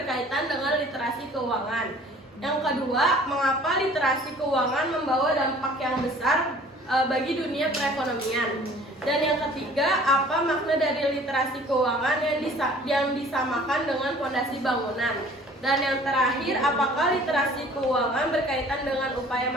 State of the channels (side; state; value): both; normal; correlation 0.51